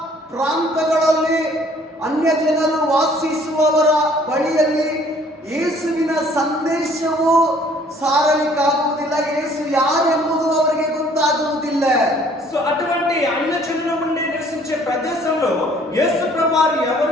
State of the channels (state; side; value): normal; both; correlation 0.57